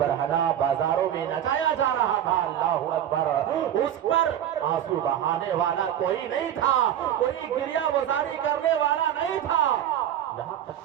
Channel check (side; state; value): left; quieter; 10.7 dB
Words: بازاروں میں نچایا جا رہا تھا. اللہ اکبر, اس پر آنسو بہانے والا کوئی نہیں تھا, کوئی گریہ وزاری کرنے والا نہیں تھا. یہاں